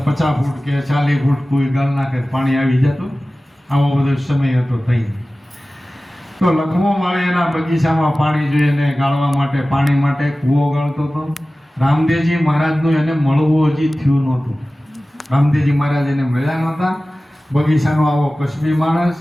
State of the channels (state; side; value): normal; both; correlation 0.97